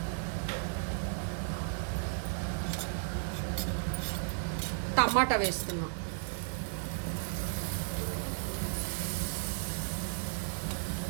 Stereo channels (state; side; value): silent; left; digital silence